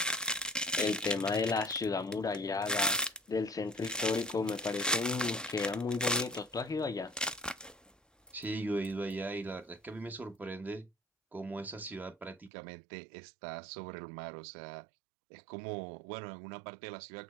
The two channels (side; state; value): left; drops out; at 12.5 s